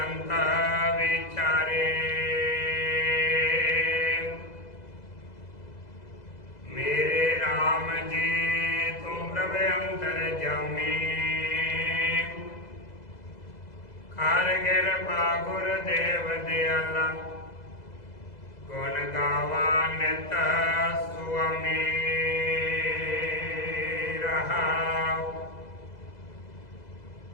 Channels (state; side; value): late; right; 2.0 ms